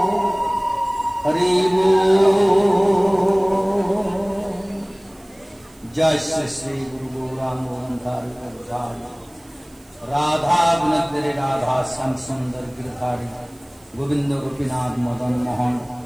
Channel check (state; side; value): noise; right; hiss, 29 dB below the sound